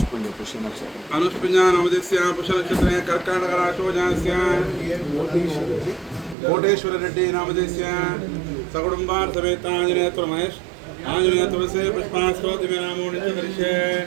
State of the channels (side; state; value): left; drops out; at 6.4 s